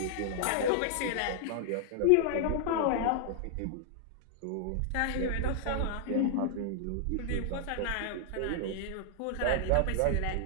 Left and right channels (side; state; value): both; different; correlation -0.01